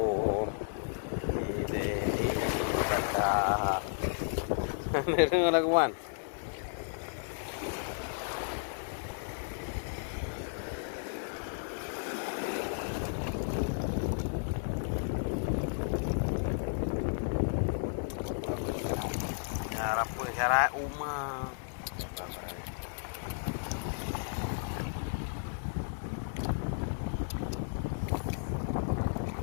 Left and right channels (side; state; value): right; silent; digital silence